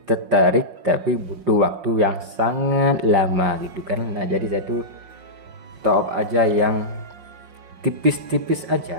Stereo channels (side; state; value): left; late; 5.6 ms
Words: tertarik tapi butuh waktu yang sangat lama gitu kan. Nah jadi saya tuh top aja yang tipis-tipis